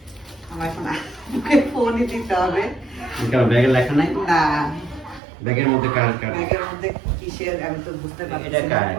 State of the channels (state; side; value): drops out; left; at 5.2 s